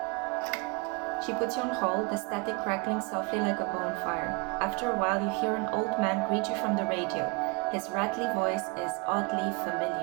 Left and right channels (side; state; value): left; quieter; 30.3 dB